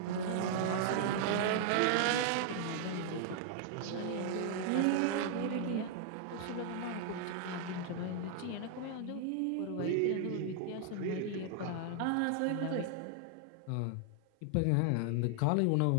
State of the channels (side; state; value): both; different; correlation 0.00